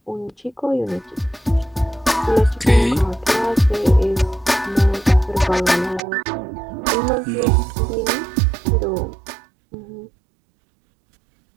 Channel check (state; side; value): drops out; left; at 6.0 s